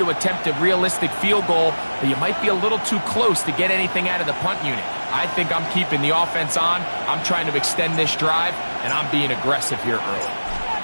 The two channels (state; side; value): inverted; both; correlation -1.00